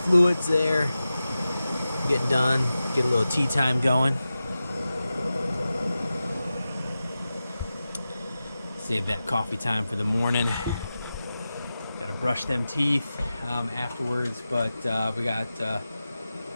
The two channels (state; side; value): inverted; both; correlation -0.93